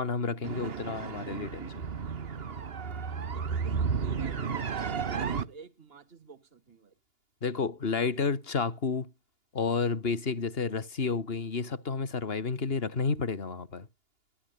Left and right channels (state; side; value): late; right; 2.8 ms